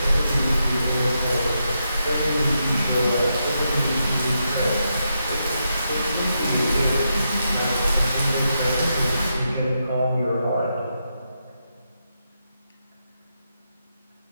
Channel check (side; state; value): both; inverted; correlation -0.84